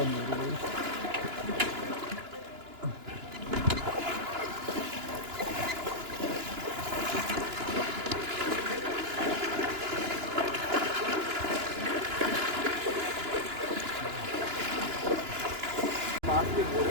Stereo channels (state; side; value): late; left; 2.9 ms